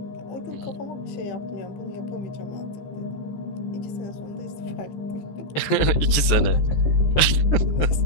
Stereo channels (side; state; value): right; late; 14 ms